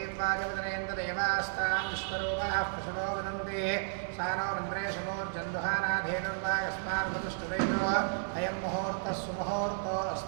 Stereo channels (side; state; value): left; silent; 56 dB below the other